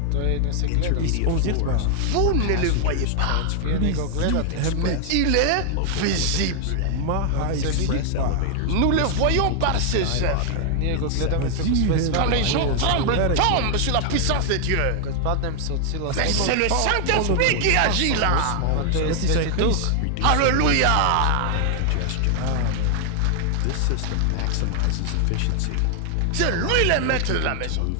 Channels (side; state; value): both; different; correlation 0.00